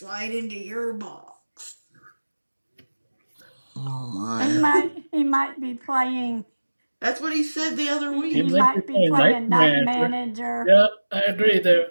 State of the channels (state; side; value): inverted; both; correlation -1.00